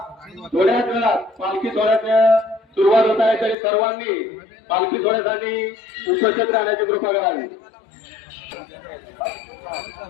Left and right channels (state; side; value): drops out; right; at 3.6 s